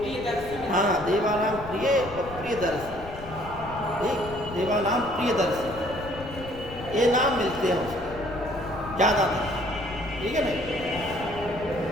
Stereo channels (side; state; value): left; noise; rumble, 14 dB below the sound